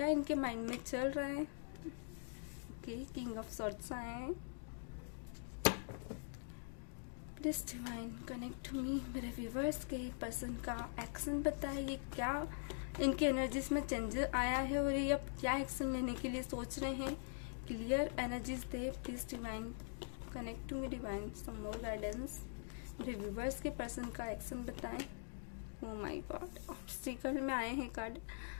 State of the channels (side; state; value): right; silent; digital silence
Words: इनके माइंड में चल रहा है। ओके, किंग ऑफ सॉर्ड्स आए हैं। Please divine connect to me, मेरे व्यूवर्स के पर्सन का एक्शन बताएं। ये क्या इनके एनर्जीज में चेंजेस आया है और ये अब क्या एक्शन लेने के लिए सोच रहे हैं। क्लियर एनर्जीज दे। Please divine connect to me. Divine some more guidance, मेरे व्यूवर्स के पर्सन का एक्शन बताएं। ओह माय गॉड, ऑब्स्टिकल में आए हैं कार्ड।